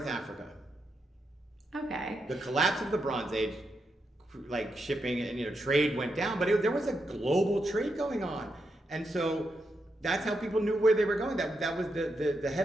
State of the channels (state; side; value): normal; both; correlation 0.84